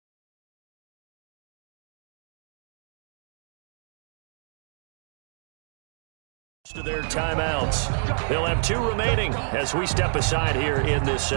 To their timeouts. They'll have 2 remaining as we step aside here in this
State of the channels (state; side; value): silent; left; digital silence